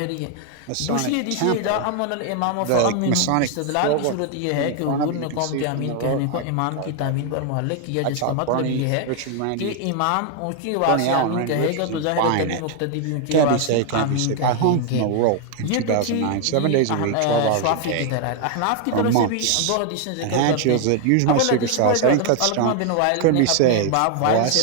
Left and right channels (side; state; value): both; different; correlation 0.00